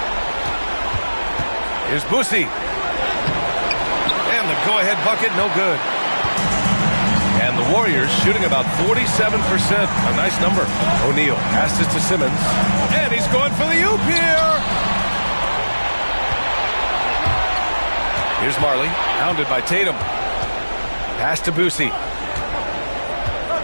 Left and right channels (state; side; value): inverted; both; correlation -1.00